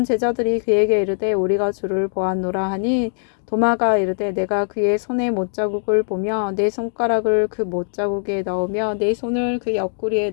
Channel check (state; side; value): silent; right; digital silence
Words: 제자들이 그에게 이르되 우리가 주를 보았노라 하니 도마가 이르되 내가 그의 손에 못자국을 보며 내 손가락을 그 못자국에 넣으며 내 손을 그 옆구리에